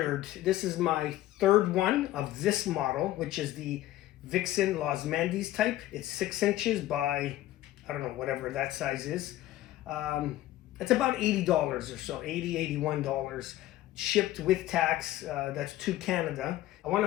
this is my third one of this model, which is the Vixen Los Mandes type. It's 6 inches by, I don't know, whatever that size is. It's about $80 or so, $80, $81, shipped with tax. That's to Canada. I want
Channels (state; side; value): quieter; right; 15.0 dB